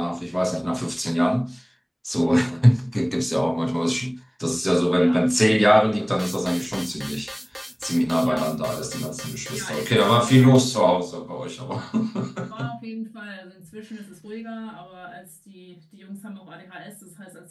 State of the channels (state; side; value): identical; both; correlation 1.00